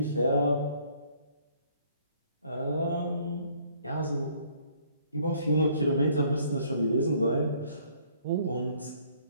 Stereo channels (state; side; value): inverted; both; correlation -0.61